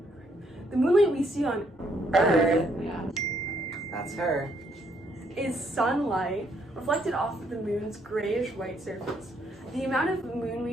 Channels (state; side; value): normal; both; correlation 0.71